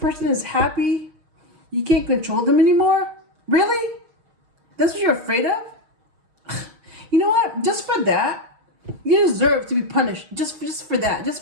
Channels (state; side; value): late; left; 6.4 ms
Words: is happy, you can't control them anymore? Really? That's what you're afraid of? You know what? Just for that, you deserve to be punished. Just for that.